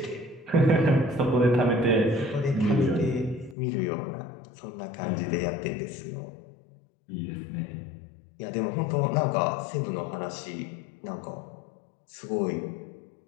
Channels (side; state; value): right; drops out; at 3.6 s